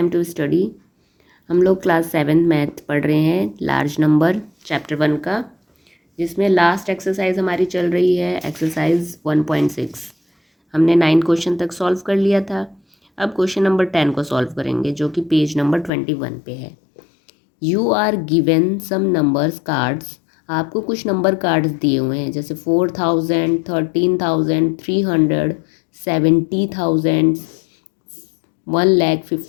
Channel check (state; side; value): drops out; right; at 15.9 s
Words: to study. हम लोग class 7 math पढ़ रहे हैं, लार्ज नंबर चैप्टर 1 का, जिसमें लास्ट एक्सरसाइज हमारी चल रही है एक्सरसाइज 1.6। हमने 9 क्वेश्चन तक सॉल्व कर लिया था। अब क्वेश्चन नंबर 10 को सॉल्व करेंगे, जो कि पेज नंबर 21 पे है। You are given some numbers cards. आपको कुछ नंबर कार्ड्स दिए हुए हैं, जैसे 4000, 13,000, 300, 70,000,